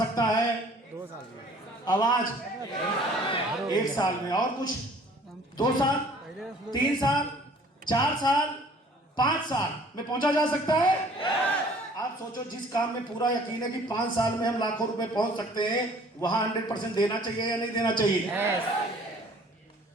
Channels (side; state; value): both; normal; correlation 0.54